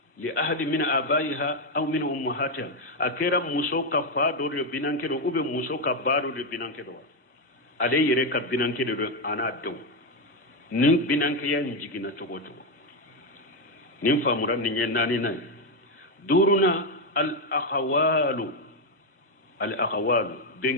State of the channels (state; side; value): normal; both; correlation 0.05